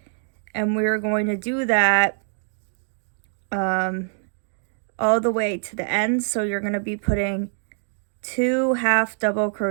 and we're going to do that all the way to the end. So you're going to be putting 2 half double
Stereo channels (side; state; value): left; silent; digital silence